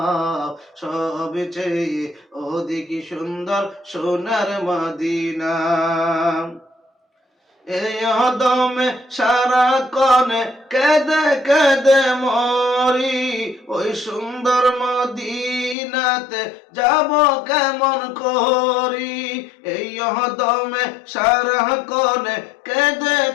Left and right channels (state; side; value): drops out; right; at 15.8 s